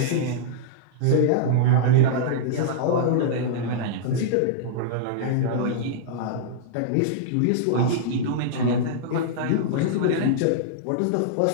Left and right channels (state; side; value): different; both; correlation -0.02